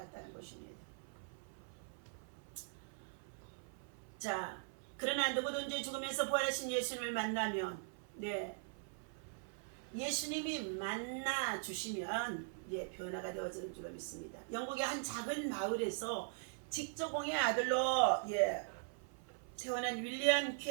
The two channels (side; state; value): left; silent; 50 dB below the other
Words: 것입니다. 자, 그러나 누구든지 죽으면서 부활하신 예수님을 만나면 예수님이 만나 주시면 변화가 되어지는 줄로 믿습니다. 영국의 한 작은 마을에서 직조공의 아들로 태어난 윌리엄